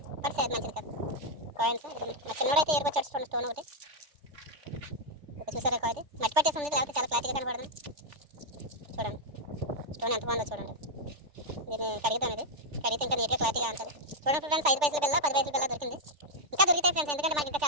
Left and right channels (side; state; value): left; late; 3.4 ms